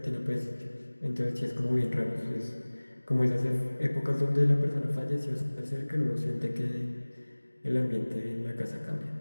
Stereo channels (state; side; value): inverted; both; correlation -1.00